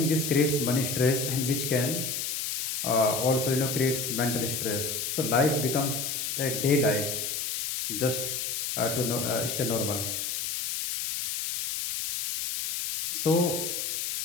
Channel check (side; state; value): left; noise; hiss, 2 dB below the sound